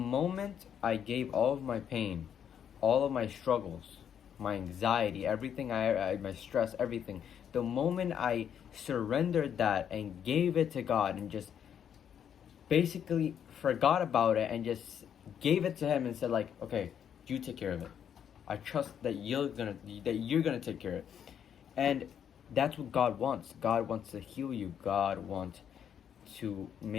I gave all of my pain, all of my struggles, my anxiety, everything, my stress, everything, the moment I surrendered that and gave it to God and just basically forgot about it and just gave it to Him and said like, okay, you take care of it. I trust that you're gonna take care of it. And that's what God wants. God wants to heal you. God wants to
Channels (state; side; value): quieter; right; 8.7 dB